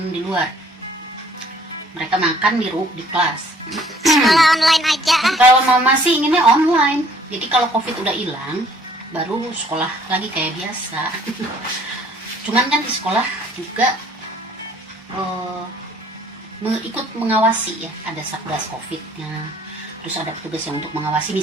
di luar. Mereka makan di kelas. Sekolah online aja. Kalau mau masih inginnya online. Jadi kalau COVID udah hilang, baru sekolah lagi kayak biasa. Cuman kan di sekolah juga ikut mengawasi ya, ada satgas COVID-nya. Terus ada petugas yang untuk mengawasi,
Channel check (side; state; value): both; normal; correlation 0.58